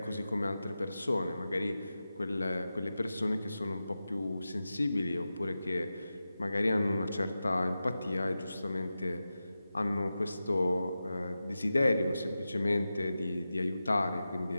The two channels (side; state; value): both; inverted; correlation -0.93